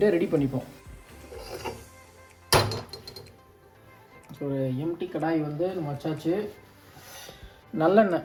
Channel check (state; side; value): identical; both; correlation 1.00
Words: ரெடி பண்ணிப்போம். ஸோ ஒரு எம்டி கடாய் வந்து நம்ம வச்சாச்சு. நல்லெண்ணெய்.